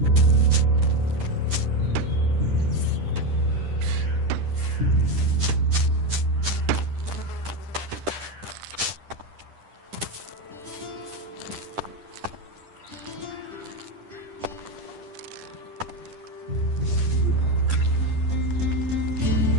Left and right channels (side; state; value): left; late; 10 ms